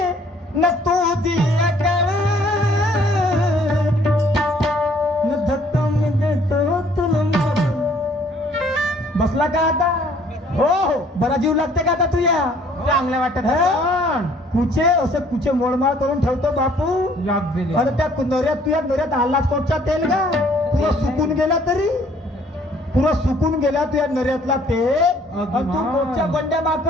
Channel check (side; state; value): both; normal; correlation 0.59